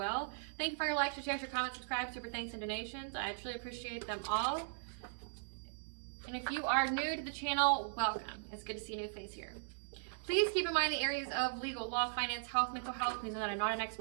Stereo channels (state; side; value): silent; left; 52 dB below the other